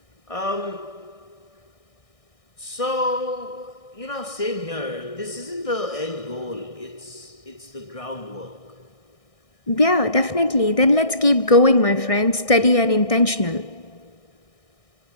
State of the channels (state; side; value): late; right; 1.6 ms